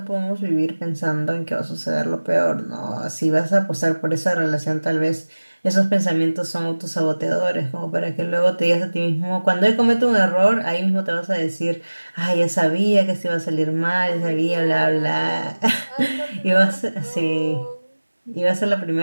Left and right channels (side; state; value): both; inverted; correlation -1.00